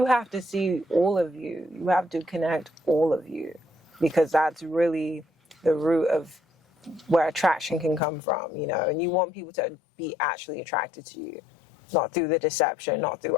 have to see all of you. You have to connect all of you, because that's really the root of where attraction can come from, you know. And you want people to be actually attracted to you, not through the deception, not through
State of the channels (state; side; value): drops out; right; at 8.0 s